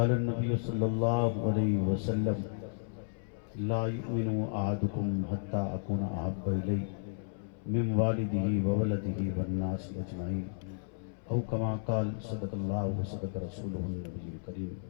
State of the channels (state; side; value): silent; right; 56 dB below the other